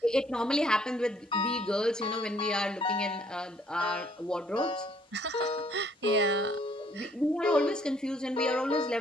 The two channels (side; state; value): both; normal; correlation 0.63